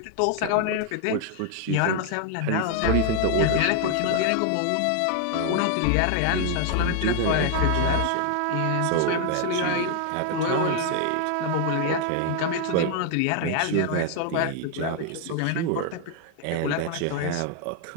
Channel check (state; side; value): different; both; correlation 0.00